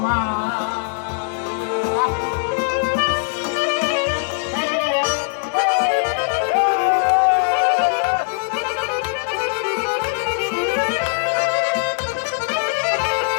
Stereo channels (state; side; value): silent; right; 65 dB below the other